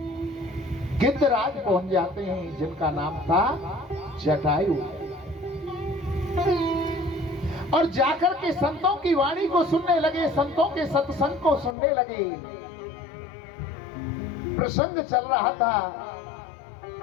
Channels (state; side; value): drops out; right; at 11.8 s